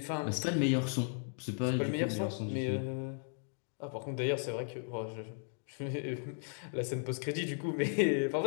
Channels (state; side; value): silent; right; 54 dB below the other